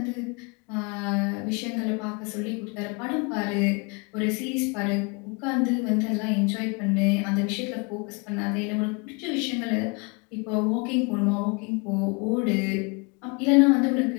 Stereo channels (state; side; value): quieter; right; 30.9 dB